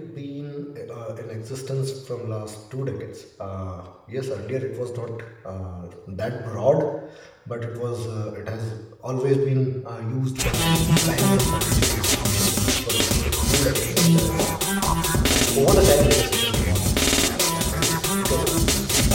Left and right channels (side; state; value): both; identical; correlation 1.00